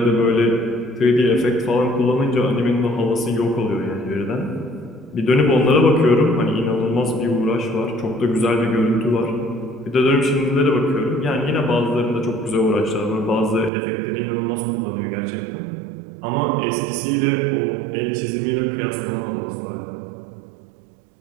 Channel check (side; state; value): left; drops out; at 13.7 s